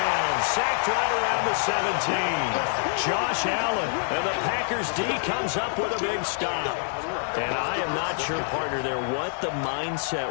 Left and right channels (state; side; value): silent; right; digital silence